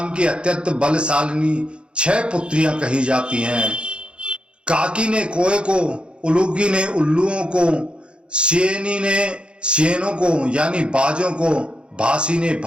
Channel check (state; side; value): late; left; 0.056 ms